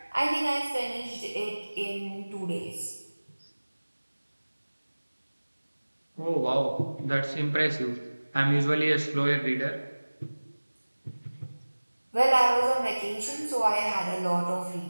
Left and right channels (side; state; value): both; inverted; correlation -1.00